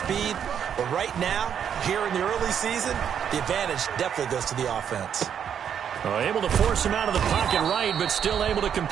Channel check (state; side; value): quieter; left; 8.4 dB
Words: But right now, here in the early season, the advantage definitely goes to the offense. Able to force him out of the pocket right, but still able to